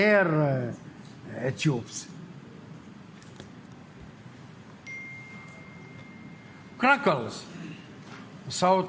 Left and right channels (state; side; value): identical; both; correlation 1.00